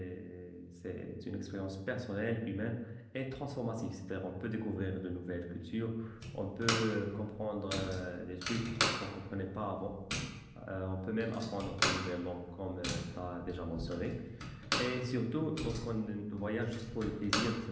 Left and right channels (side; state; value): both; identical; correlation 1.00